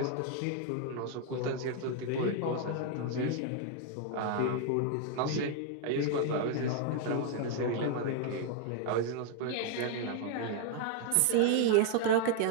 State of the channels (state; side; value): different; both; correlation 0.00